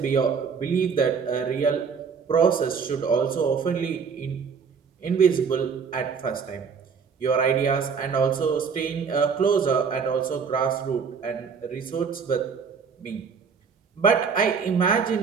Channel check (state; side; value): quieter; left; 5.9 dB